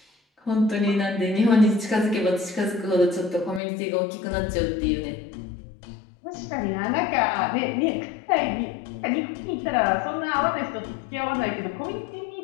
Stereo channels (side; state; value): right; drops out; at 3.6 s